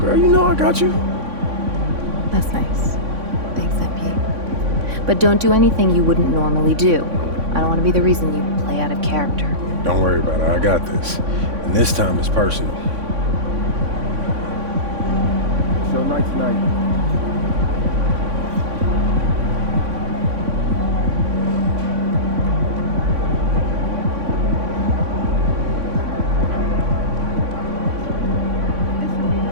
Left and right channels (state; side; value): late; left; 3.6 ms